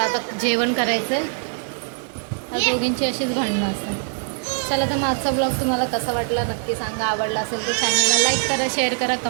आता जेवण करायचं आहे. या दोघींची अशीच भांडणं असतात. चला तर माझा ब्लॉग तुम्हाला कसा वाटला नक्की सांगा. आवडला असेल तर चॅनलला लाईक करा, शेअर करा,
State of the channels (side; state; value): left; silent; digital silence